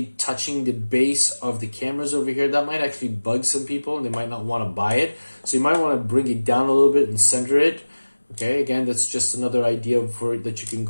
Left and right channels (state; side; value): inverted; both; correlation -1.00